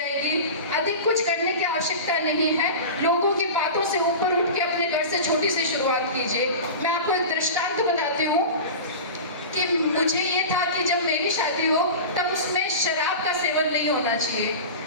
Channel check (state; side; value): inverted; both; correlation -0.30